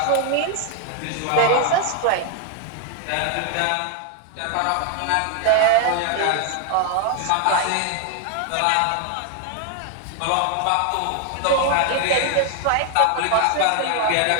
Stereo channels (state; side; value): different; both; correlation 0.01